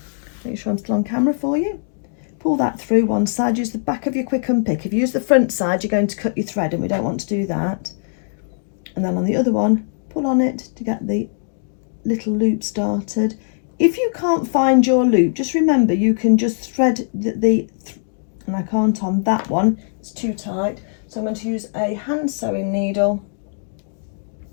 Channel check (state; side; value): silent; right; digital silence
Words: Make sure I'm still on camera for you. Pull that through one side, use the back of your quick unpick. If you use the front side, you're going to cut your thread, and we don't want to do that. And then on the other one, pull on it to get the little loop started. If you can't find your loop, just remember you can just thread and I can't on that one, it's too tight. So I'm going to use a hand sewing needle,